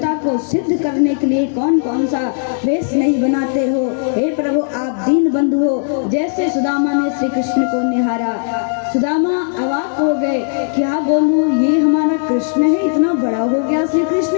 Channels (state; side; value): silent; right; digital silence